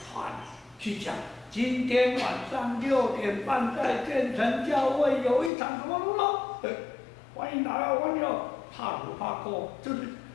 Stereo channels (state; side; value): drops out; right; at 5.5 s